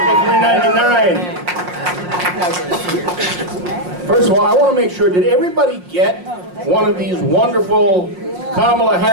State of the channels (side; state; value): left; late; 5.6 ms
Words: 399. First of all, I want to make sure, did everybody get one of these wonderful Kamala